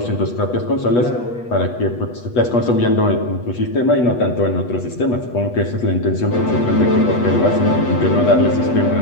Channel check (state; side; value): late; right; 8.2 ms